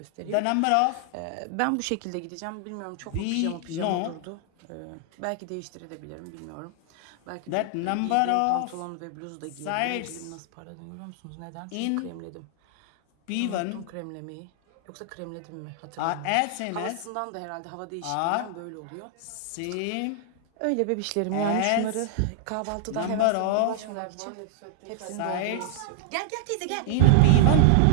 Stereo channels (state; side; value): different; both; correlation 0.00